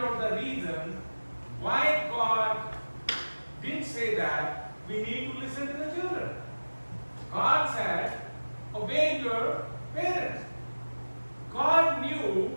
out the reason why God did say that we need to listen to the children. God said, obey your parents. God knew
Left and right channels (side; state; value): both; inverted; correlation -1.00